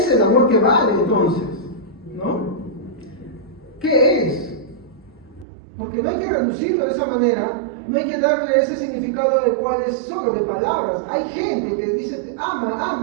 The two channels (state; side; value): drops out; left; at 5.5 s